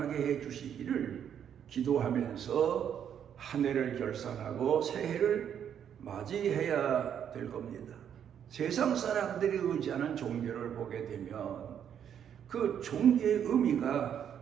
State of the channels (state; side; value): quieter; left; 8.9 dB